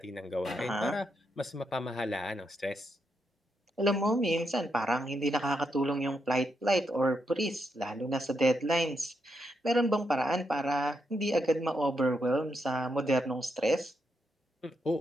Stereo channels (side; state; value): both; normal; correlation 0.81